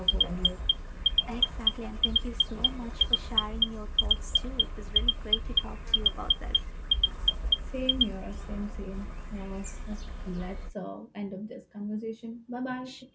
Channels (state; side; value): identical; both; correlation 1.00